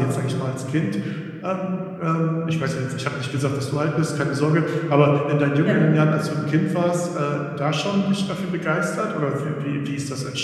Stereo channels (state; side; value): identical; both; correlation 1.00